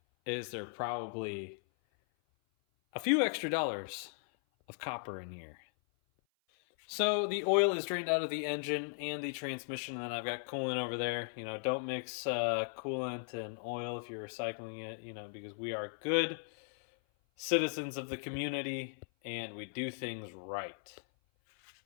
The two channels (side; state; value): right; silent; 53 dB below the other